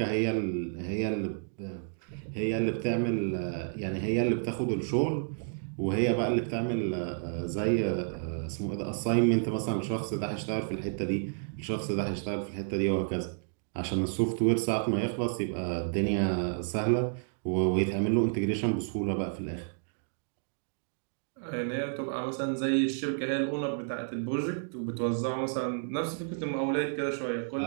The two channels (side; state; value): left; silent; digital silence